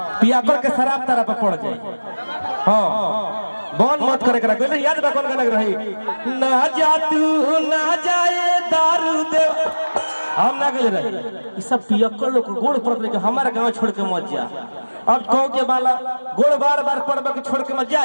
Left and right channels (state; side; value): inverted; both; correlation -1.00